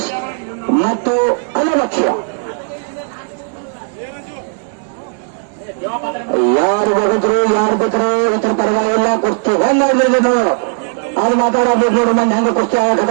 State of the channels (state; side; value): silent; left; 56 dB below the other